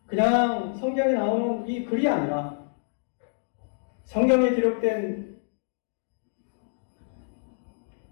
그냥 성경에 나오는 이 글이 아니라 성경에 기록된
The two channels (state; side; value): silent; right; digital silence